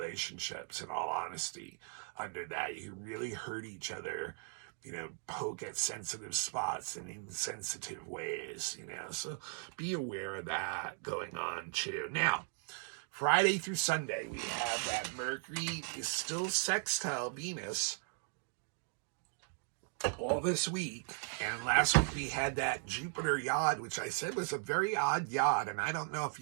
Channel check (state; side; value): silent; left; 53 dB below the other